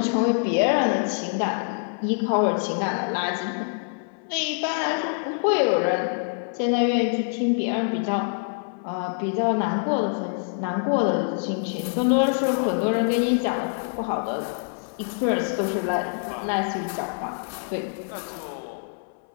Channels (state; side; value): silent; right; 62 dB below the other